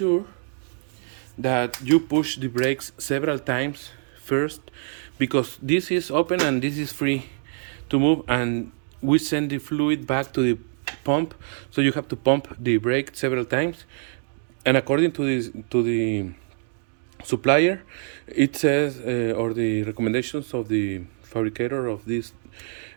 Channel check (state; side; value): silent; left; 62 dB below the other